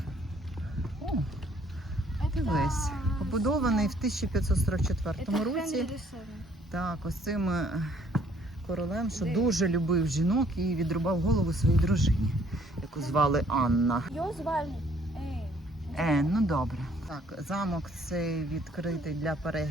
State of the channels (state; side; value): normal; both; correlation 0.62